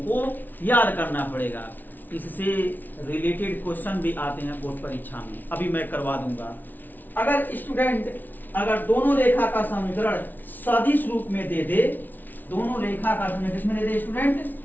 को याद करना पड़ेगा। इससे रिलेटेड क्वेश्चन भी आते हैं बोर्ड परीक्षा में, अभी मैं करवा दूंगा। अगर स्टूडेंट, अगर दोनों रेखा का समीकरण सदिश रूप में दे दे, दोनों रेखा का समीकरण किसमें दे दे स्टूडेंट?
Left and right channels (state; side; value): late; right; 0.085 ms